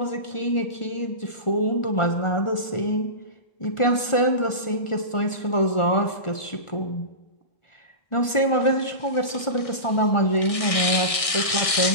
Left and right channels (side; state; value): right; late; 1.6 ms